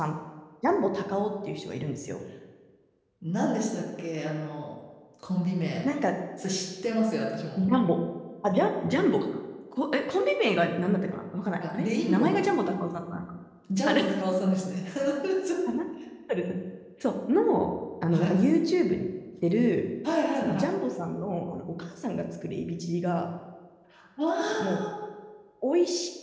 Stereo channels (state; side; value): identical; both; correlation 1.00